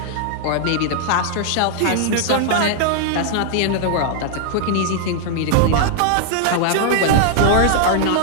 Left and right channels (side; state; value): both; different; correlation 0.00